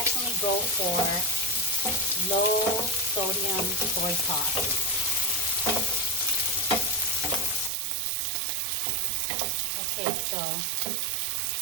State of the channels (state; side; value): drops out; left; at 7.7 s